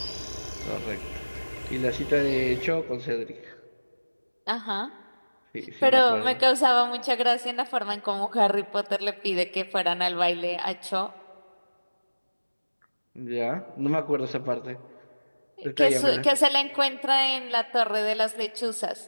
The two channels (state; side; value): inverted; both; correlation -1.00